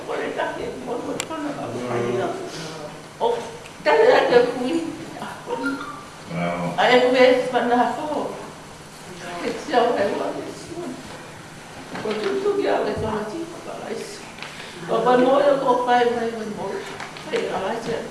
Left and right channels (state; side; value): identical; both; correlation 1.00